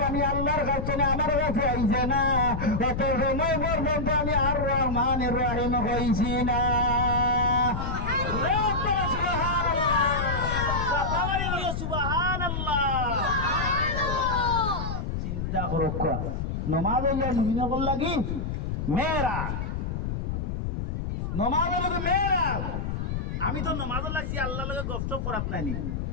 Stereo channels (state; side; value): noise; left; rumble, 3 dB below the sound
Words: আমি আল্লাহর কাছে না আমার কাছে আইছে না অত সময় পর্যন্ত আমি আর রহমানির রহিম হইছি না চিন্তা করো নমাজ মুমিনা বললা কি মেয়েরা নমাজ মেয়েরা আমি তো নামাজ লাগছি আল্লাহ লগে গপসপ করাত নাইনি